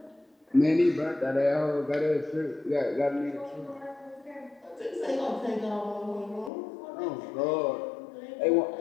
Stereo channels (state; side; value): drops out; right; at 6.5 s